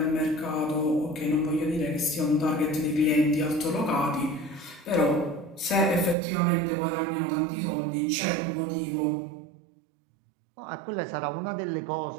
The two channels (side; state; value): left; drops out; at 6.2 s